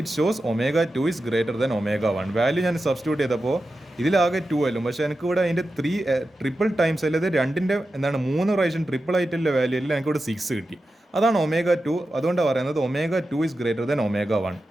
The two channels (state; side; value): normal; both; correlation 0.91